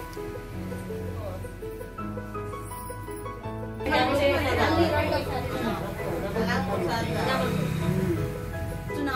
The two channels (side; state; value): both; identical; correlation 1.00